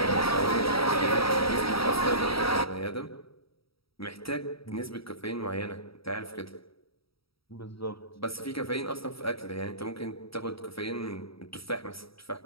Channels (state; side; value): late; right; 0.75 ms